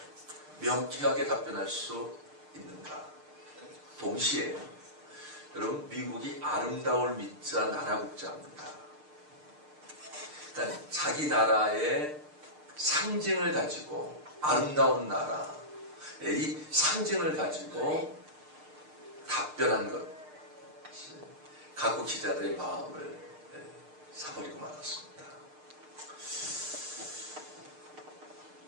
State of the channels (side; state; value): left; late; 6.6 ms